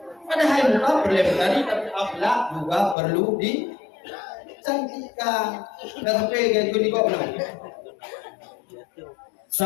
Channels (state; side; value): drops out; right; at 3.0 s